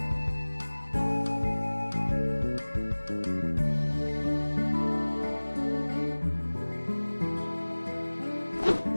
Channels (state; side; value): inverted; both; correlation -1.00